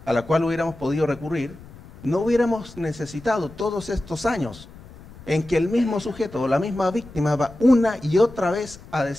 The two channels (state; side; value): noise; left; rumble, 19 dB below the sound